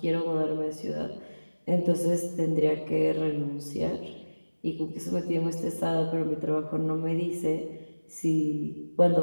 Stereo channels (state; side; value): inverted; both; correlation -1.00